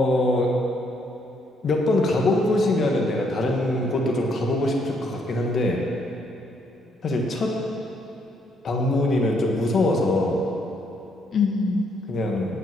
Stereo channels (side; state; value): both; normal; correlation 0.71